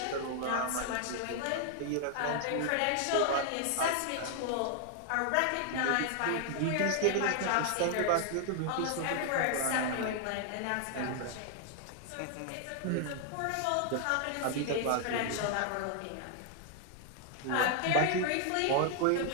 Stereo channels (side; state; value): both; different; correlation 0.00